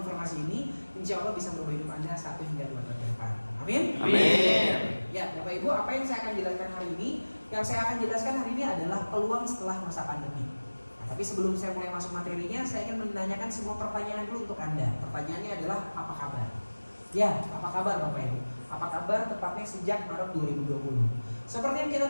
ini, insya Allah bisa merubah hidup Anda 1 hingga 2 tahun ke depan. Amin. Amin. Ya, Bapak Ibu, apa yang saya akan jelaskan hari ini? Yang saya akan jelaskan hari ini adalah peluang setelah masa pandemi. Nah, tapi sebelum saya mulai masuk materinya, saya ingin menanyakan semua pertanyaan dulu untuk Anda. Pertanyaannya adalah apa kabar? Ya, apa kabar Bapak Ibu? Apa kabar tepatnya sejak Maret 2020? Seperti yang kita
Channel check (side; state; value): both; inverted; correlation -1.00